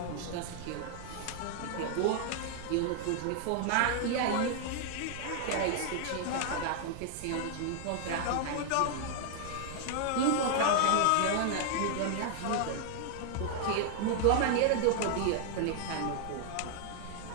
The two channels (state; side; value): different; both; correlation 0.00